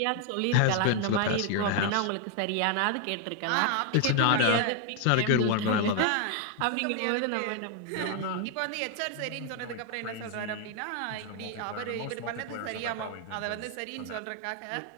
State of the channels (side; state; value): both; different; correlation 0.00